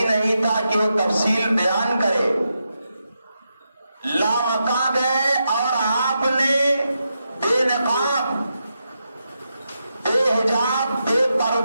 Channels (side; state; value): both; inverted; correlation -0.86